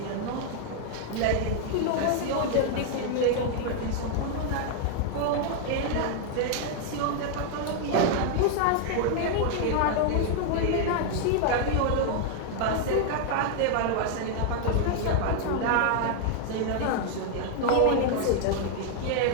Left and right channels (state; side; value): different; both; correlation 0.00